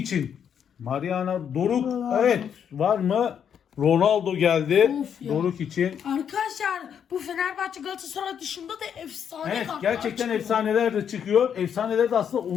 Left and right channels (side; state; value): right; quieter; 8.2 dB